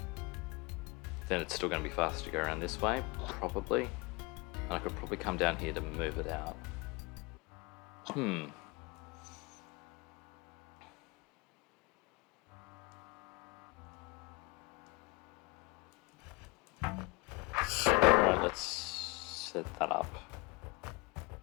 Then it's still going to be faster to go around this way, probably. And I could probably come down here to move it out. Alright, let's set that up.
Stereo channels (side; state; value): right; quieter; 25.5 dB